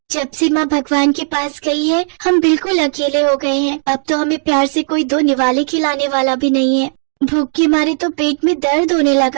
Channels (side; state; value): left; silent; digital silence